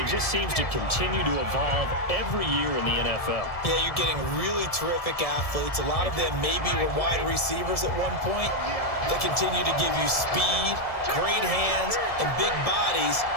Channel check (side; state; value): right; late; 1.7 ms